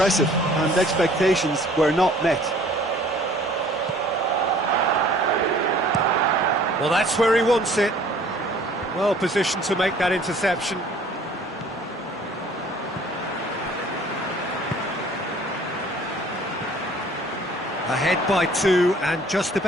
and expectations were not met. Well, that's where he wants it. Well positioned to make that interception. Ahead by 2 and just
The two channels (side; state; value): both; normal; correlation 0.54